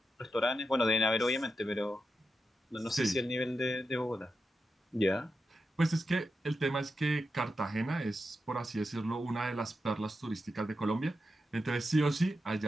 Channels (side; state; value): both; normal; correlation 0.88